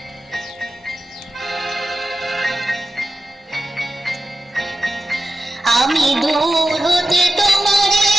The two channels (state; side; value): normal; both; correlation 0.91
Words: আমি দূর হতে তোমারে